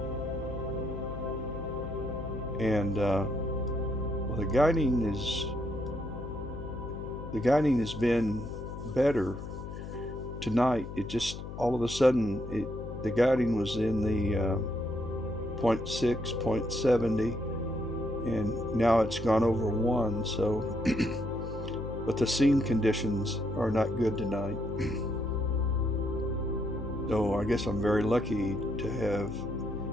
and well, the guiding has been better tonight. It just all of a sudden the guiding was in the 0.6, 0.70, and now it's gone over 1. So, but the scene conditions are not good tonight. So I guess I'm very lucky to have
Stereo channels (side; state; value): left; noise; hum, 9 dB below the sound